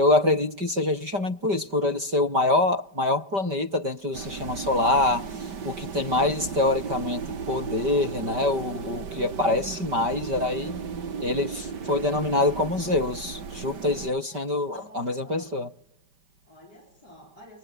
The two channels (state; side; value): late; left; 5.1 ms